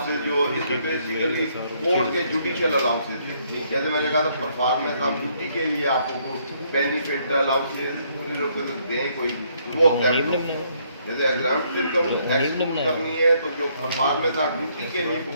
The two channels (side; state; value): both; inverted; correlation -0.69